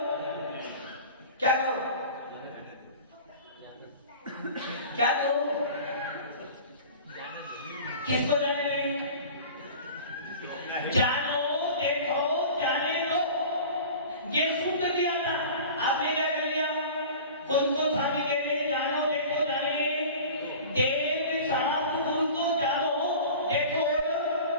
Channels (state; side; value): inverted; both; correlation -0.39